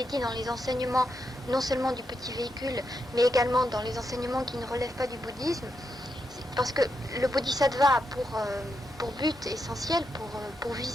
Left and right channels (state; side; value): normal; both; correlation 0.83